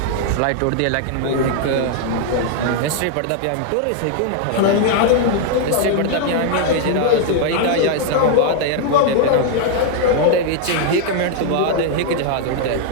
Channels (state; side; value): different; both; correlation 0.00